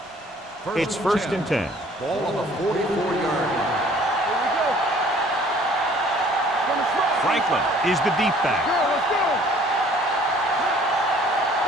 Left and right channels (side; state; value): both; normal; correlation 0.55